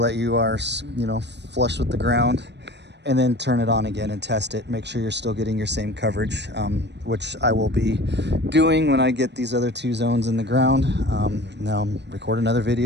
that you are, flush with the ground, and then turn it on again and test it. Make sure you're still getting your same coverage, which I will be doing when I get these other 2 zones in the ground. Now I'm recording another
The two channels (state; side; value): late; left; 0.50 ms